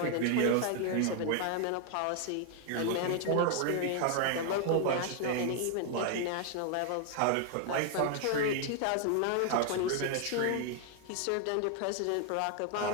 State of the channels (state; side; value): different; both; correlation 0.00